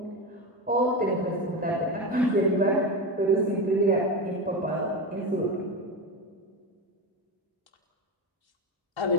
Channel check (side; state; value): both; normal; correlation 0.19